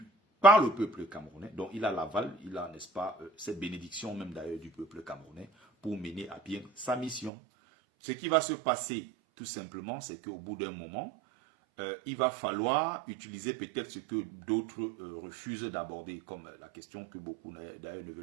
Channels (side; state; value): left; drops out; at 7.3 s